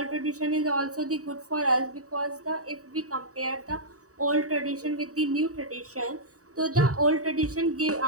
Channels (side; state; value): left; late; 0.66 ms